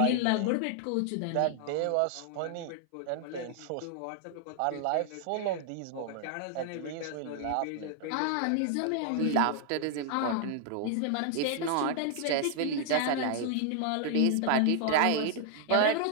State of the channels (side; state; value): both; different; correlation 0.00